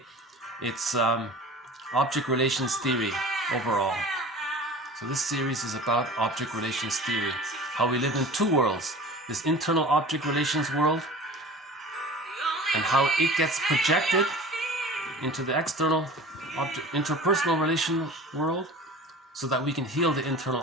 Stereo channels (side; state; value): both; normal; correlation 0.39